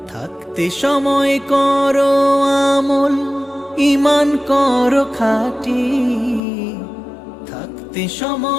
থাকতে সময় করো আমল, ঈমান করো খাঁটি। থাকতে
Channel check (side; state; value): right; drops out; at 6.4 s